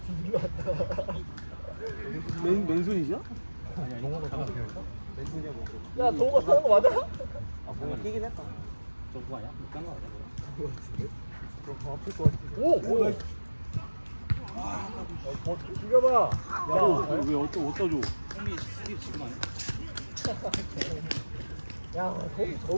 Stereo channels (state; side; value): inverted; both; correlation -1.00